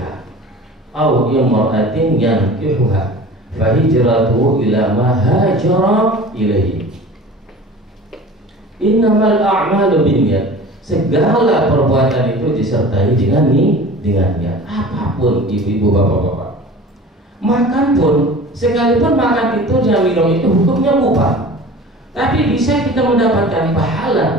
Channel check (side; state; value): both; normal; correlation 0.40